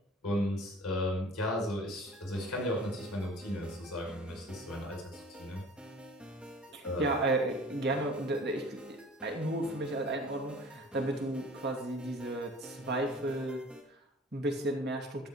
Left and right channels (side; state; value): both; normal; correlation 0.46